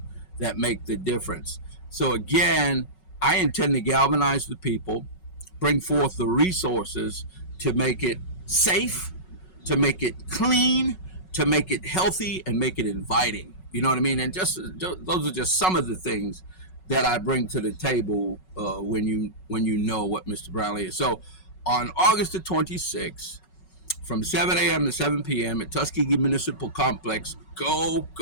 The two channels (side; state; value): right; late; 5.4 ms